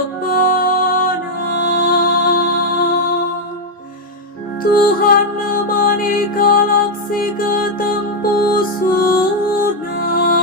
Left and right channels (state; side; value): normal; both; correlation 0.01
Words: Tuhan nemani kalak si ketempusuna,